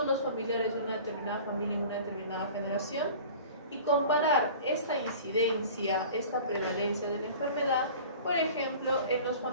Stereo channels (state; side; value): inverted; both; correlation -0.42